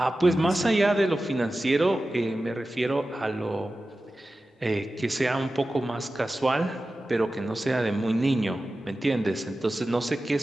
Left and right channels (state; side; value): normal; both; correlation 0.94